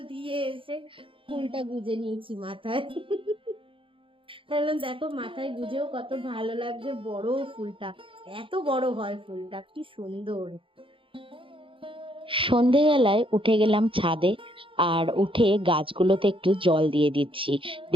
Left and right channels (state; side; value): late; left; 0.25 ms